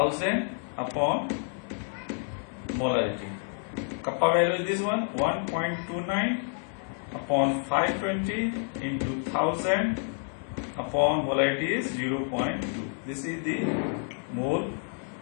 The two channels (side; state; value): right; silent; 56 dB below the other